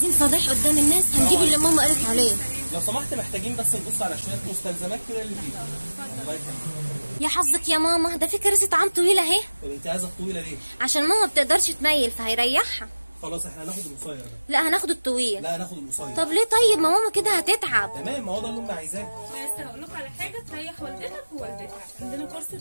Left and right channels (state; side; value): inverted; both; correlation -1.00